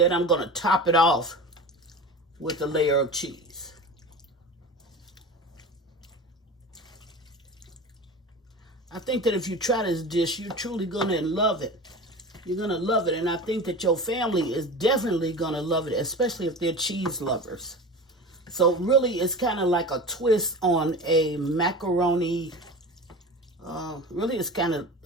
I'm going to top it off with a layer of cheese. I think that if you try this dish, you're truly going to love it. You're going to love it, and I think that your family is definitely going to love it, especially if they're cheese lovers. So really, it's kind of like a twist on a macaroni. Really, it's kind of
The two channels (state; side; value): normal; both; correlation 0.32